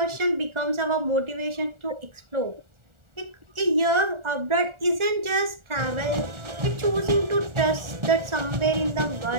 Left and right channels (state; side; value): late; left; 1.4 ms